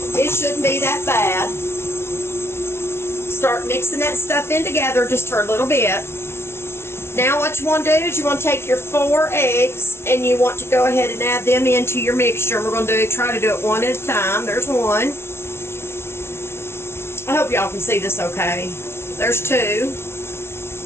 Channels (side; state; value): right; late; 0.12 ms